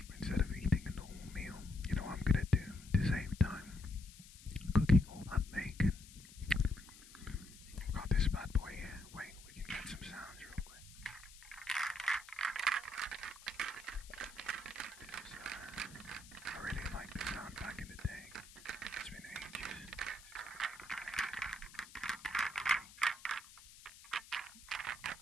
Instead of eating a normal meal, you know what I'm gonna do to save time? Cooking all that bacon. I've got this bad boy here. Wait, we can get some sounds real quick. This is, I really like this sound back in the day. It's been ages.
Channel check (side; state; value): left; noise; hiss, 19 dB below the sound